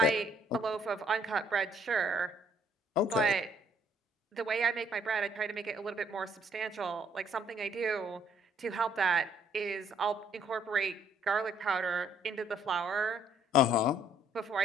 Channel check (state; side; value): normal; both; correlation 0.65